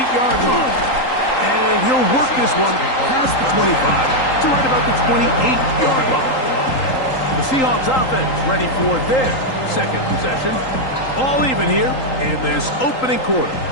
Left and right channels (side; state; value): right; late; 3.8 ms